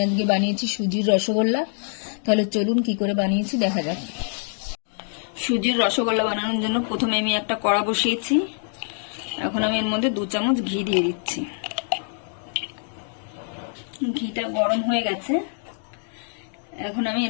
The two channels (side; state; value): right; silent; 58 dB below the other